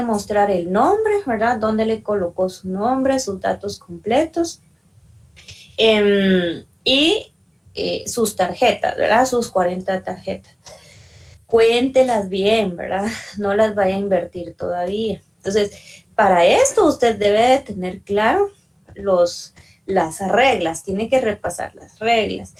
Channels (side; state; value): both; identical; correlation 1.00